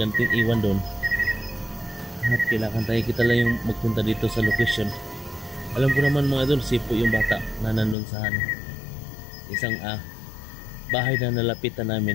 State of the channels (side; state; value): right; drops out; at 8.0 s